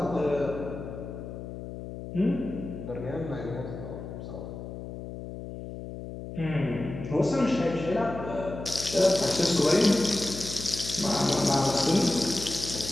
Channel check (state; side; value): noise; left; hum, 10 dB below the sound